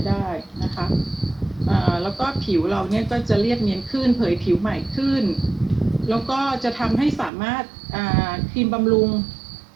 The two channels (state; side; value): drops out; left; at 7.3 s